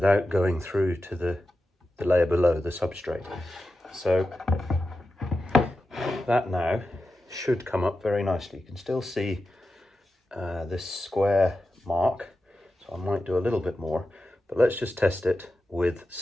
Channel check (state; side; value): normal; both; correlation 0.91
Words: going through to the layer below, the substrate. So that now should come up very nicely. You can still see this square mark, so I might do a little bit more, but let's just test it with